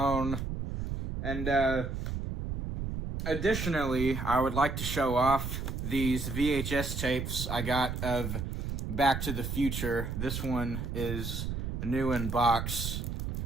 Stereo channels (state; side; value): noise; right; rumble, 4 dB below the sound